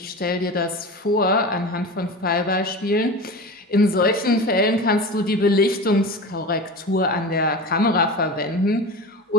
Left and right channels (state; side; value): normal; both; correlation 0.30